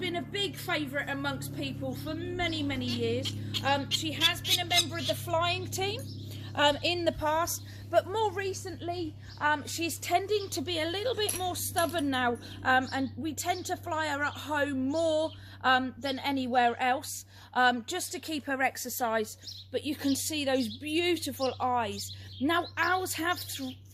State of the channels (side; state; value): both; identical; correlation 1.00